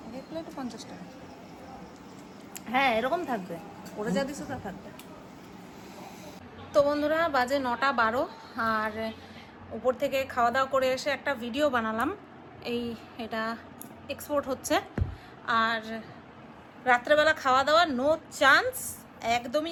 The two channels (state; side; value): identical; both; correlation 1.00